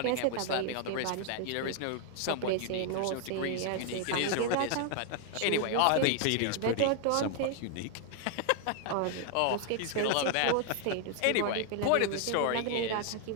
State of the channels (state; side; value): different; both; correlation 0.00